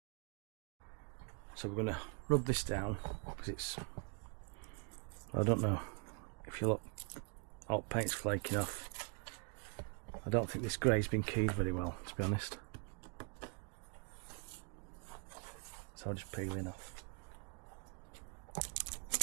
So we're going to rub this down because it's, I don't know if you look, all paint's flaking off. I don't think this grey's been keyed very well, to be honest. So I'll just peel it off.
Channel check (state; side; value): quieter; left; 37.2 dB